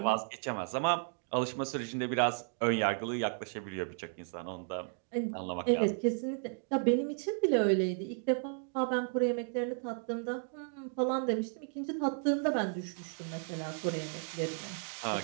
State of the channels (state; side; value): silent; left; 55 dB below the other